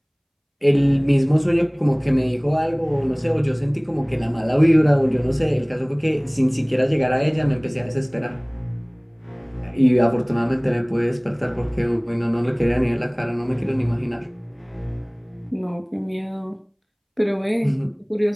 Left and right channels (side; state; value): both; identical; correlation 1.00